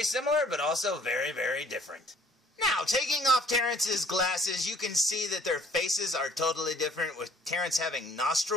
similar, but also very, very different. Now, taking off Terrence's glasses, you can see that their faces are totally different, with Terrence having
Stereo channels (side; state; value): both; normal; correlation 0.58